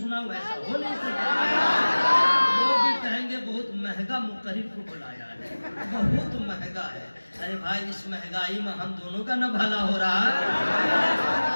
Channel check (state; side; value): inverted; both; correlation -1.00